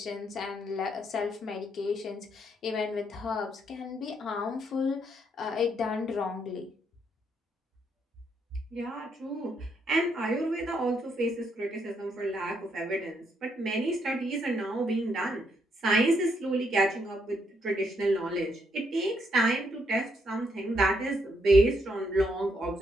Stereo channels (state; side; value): normal; both; correlation 0.75